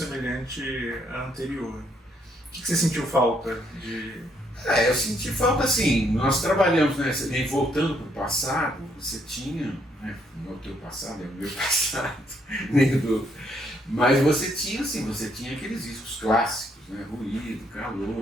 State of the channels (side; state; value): both; normal; correlation 0.71